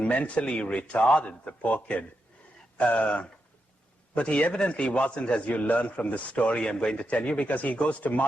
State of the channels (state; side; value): normal; both; correlation 0.85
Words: retarded, the poor kid. But he evidently wasn't, as you learn from the story I'm going to tell you, because he goes to